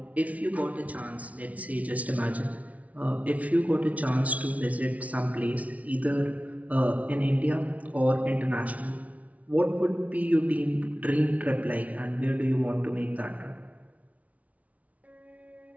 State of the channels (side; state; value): left; late; 0.068 ms